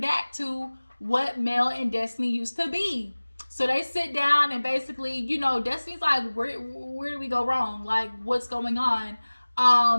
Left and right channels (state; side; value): inverted; both; correlation -1.00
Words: back to what Mel and Destiny used to be. So they sit down and basically, Destiny's like, where do we go wrong? Like, what's going on?